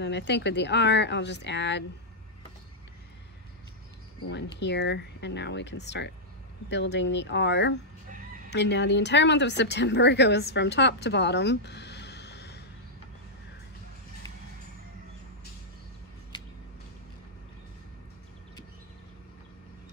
then I think with the R, I'll just add one here, and now we can start building the R. And now the entire month of September goes from top to bottom.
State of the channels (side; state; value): both; normal; correlation -0.07